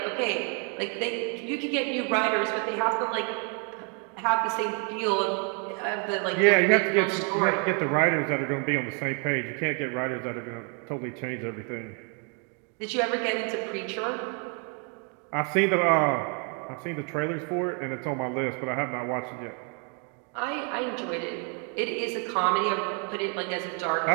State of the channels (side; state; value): left; quieter; 38.0 dB